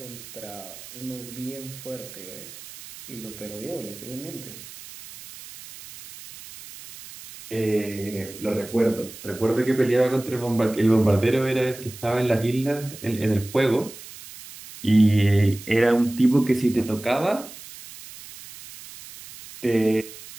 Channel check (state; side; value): noise; right; hiss, 16 dB below the sound